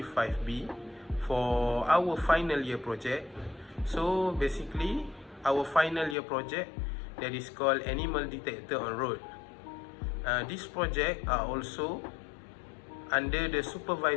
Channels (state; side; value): drops out; right; at 6.2 s